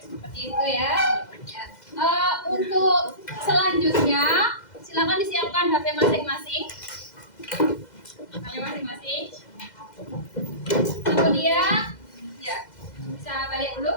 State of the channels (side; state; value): right; late; 2.0 ms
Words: itu ya. Untuk selanjutnya, silakan disiapkan HP masing-masing. Kemudian, ya bisa balik dulu,